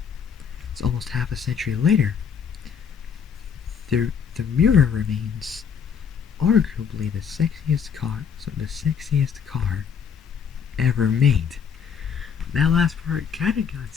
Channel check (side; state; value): right; quieter; 7.0 dB